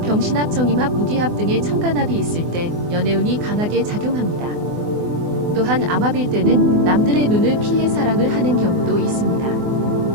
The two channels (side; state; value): left; late; 24 ms